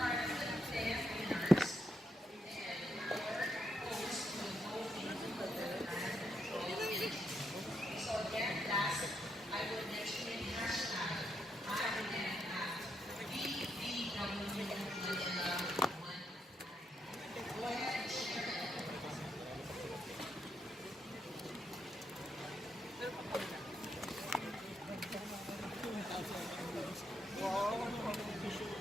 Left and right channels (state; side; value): normal; both; correlation 0.79